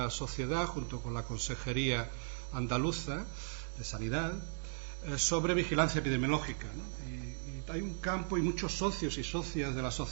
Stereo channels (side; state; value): left; silent; 53 dB below the other